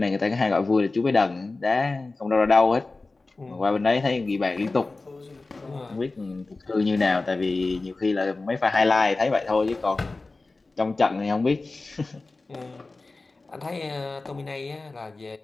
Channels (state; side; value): quieter; right; 3.5 dB